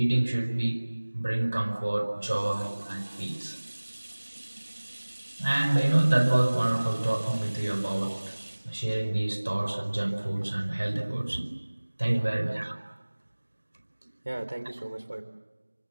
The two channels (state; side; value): inverted; both; correlation -1.00